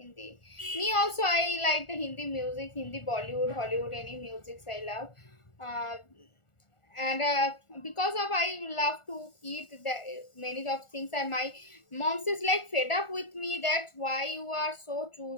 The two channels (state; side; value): late; right; 1.4 ms